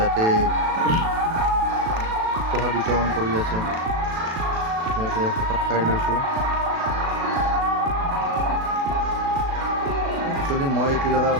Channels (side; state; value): left; late; 36 ms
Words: প্ৰসাদ বিতৰণ কৰি আছে। ইয়াতে প্ৰসাদ খাই লৈছোঁ। একচুৱেলি মই এইটো জেগা